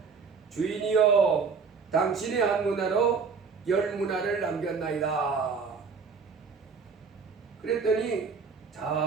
주인이여 당신의 한 문화로 10 문화를 남겼나이다. 그랬더니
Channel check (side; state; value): left; quieter; 5.3 dB